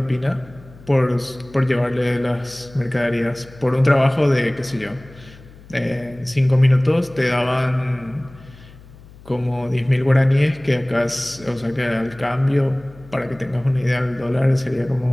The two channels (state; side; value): noise; left; hum, 22 dB below the sound